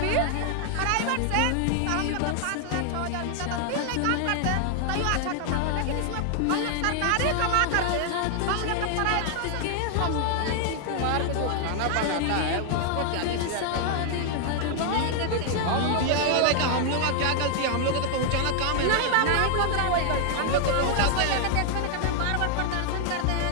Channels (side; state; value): both; different; correlation 0.00